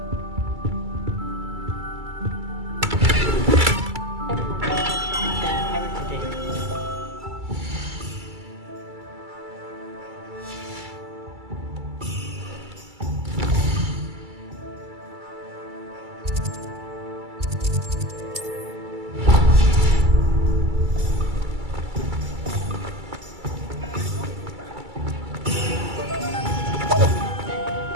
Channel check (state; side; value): late; left; 2.3 ms